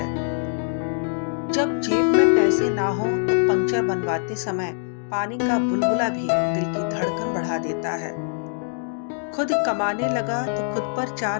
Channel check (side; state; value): right; silent; digital silence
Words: जब जेब में पैसे ना हो तो पंक्चर बनवाते समय पानी का बुलबुला भी दिल की धड़कन बढ़ा देता है। खुद कमाने लगा तो खुद पर